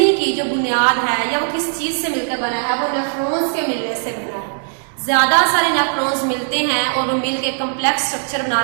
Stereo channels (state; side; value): silent; left; digital silence